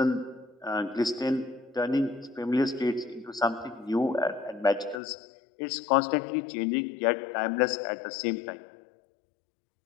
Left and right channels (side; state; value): right; drops out; at 5.0 s